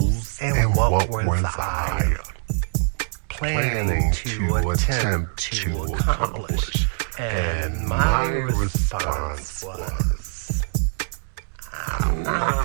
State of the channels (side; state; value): left; silent; 63 dB below the other